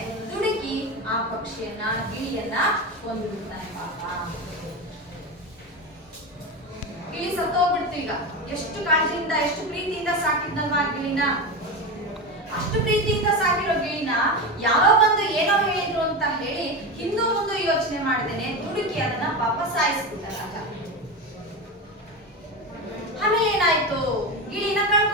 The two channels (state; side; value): normal; both; correlation 0.20